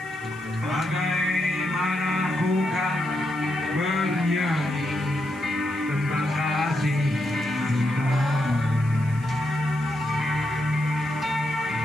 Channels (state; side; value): noise; right; hiss, 24 dB below the sound